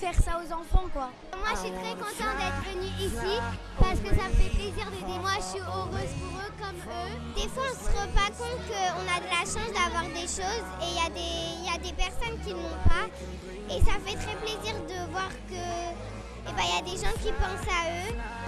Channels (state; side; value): identical; both; correlation 1.00